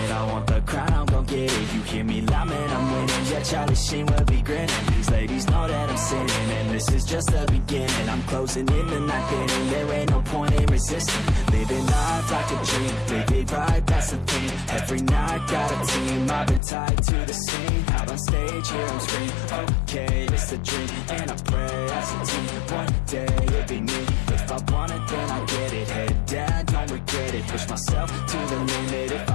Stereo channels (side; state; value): right; drops out; at 16.6 s